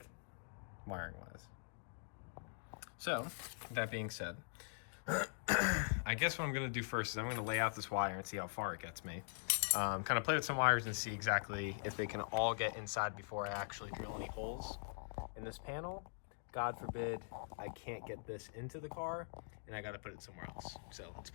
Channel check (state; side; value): silent; right; digital silence